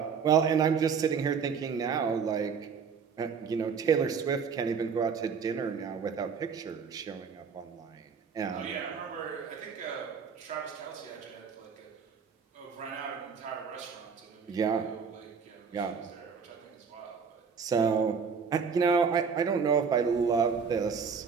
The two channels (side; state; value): left; quieter; 6.1 dB